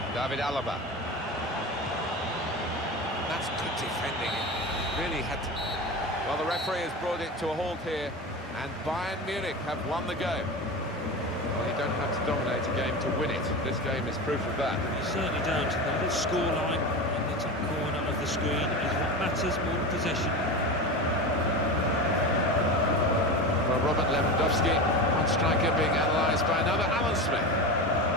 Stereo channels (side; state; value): both; normal; correlation 0.26